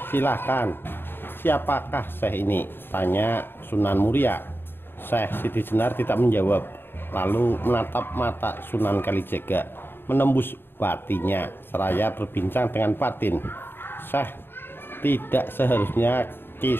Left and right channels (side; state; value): right; late; 0.10 ms